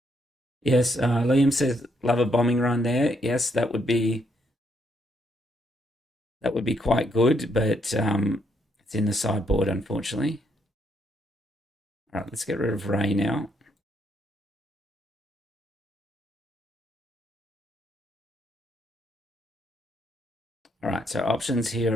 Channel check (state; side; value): normal; both; correlation 0.75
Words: Yes, Liam says love a bombing run there. Yes, that would be quite good, but it's in the sideboard, unfortunately. All right, let's get rid of Rey now. All right, so options